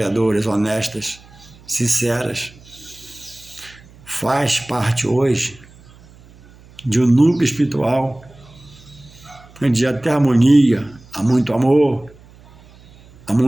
honestas, sinceras, faz parte hoje de um núcleo espiritual onde há até harmonia, há muito amor, há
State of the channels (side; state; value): right; noise; hum, 24 dB below the sound